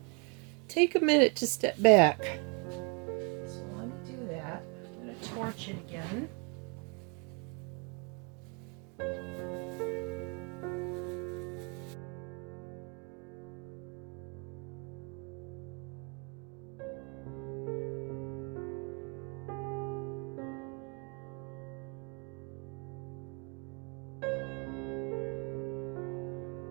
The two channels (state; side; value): quieter; left; 34.1 dB